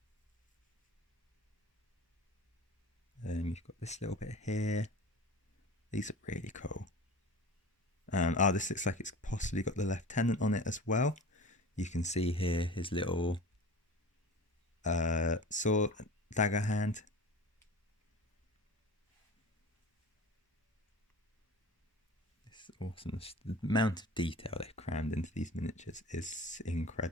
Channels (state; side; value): normal; both; correlation 0.36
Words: You've got this little bit here. These are really cool. This looks like it's possibly got the lieutenant on it as well. You can see here his little sword, dagger hand. It's awesome. The amount of detail they've crammed into these miniatures is